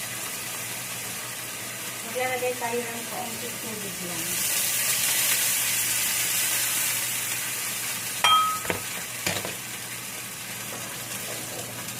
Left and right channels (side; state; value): both; identical; correlation 1.00